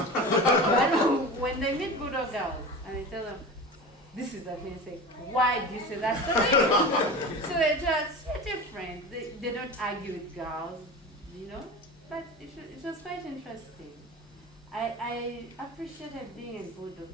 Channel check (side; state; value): both; normal; correlation 0.32